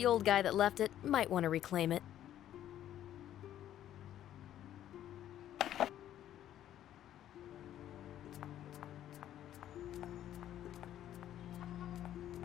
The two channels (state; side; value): quieter; right; 11.7 dB